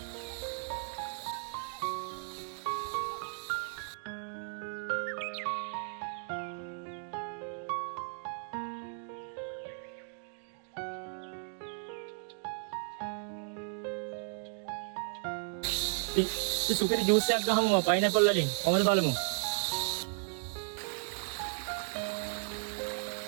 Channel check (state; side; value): silent; left; 54 dB below the other